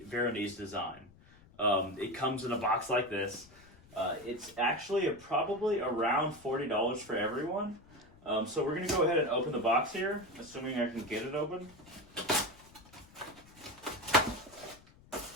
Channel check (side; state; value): left; noise; rumble, 24 dB below the sound